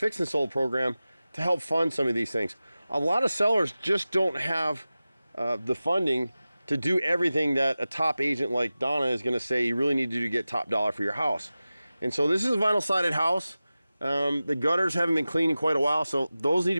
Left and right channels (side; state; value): both; inverted; correlation -0.96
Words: and Sold program to help fund some of these things. A lot of sellers just don't have the funding to do everything that a top agent like Donna is going to say you really need to do to get top dollar for your house. And so this is a vinyl sided house. The gutters haven't been cleaned in quite a while, so those need